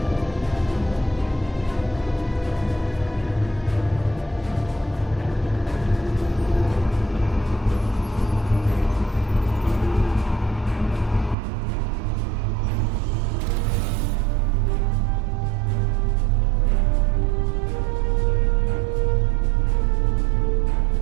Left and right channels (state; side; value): drops out; left; at 11.4 s